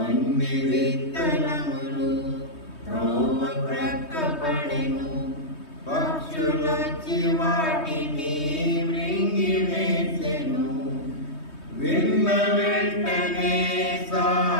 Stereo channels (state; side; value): late; right; 3.2 ms